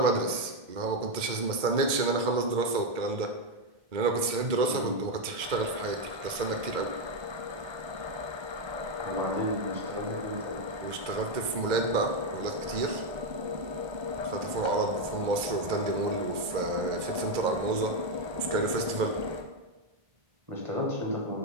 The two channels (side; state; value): left; late; 2.1 ms